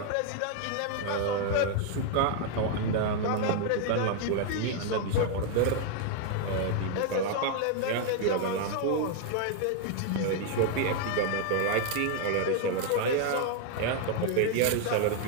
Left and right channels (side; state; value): both; different; correlation 0.00